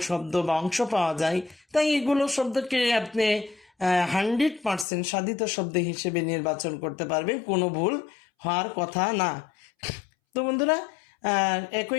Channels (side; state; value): right; drops out; at 4.9 s